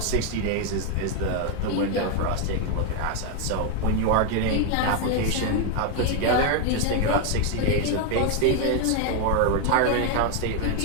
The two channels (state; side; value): different; both; correlation 0.01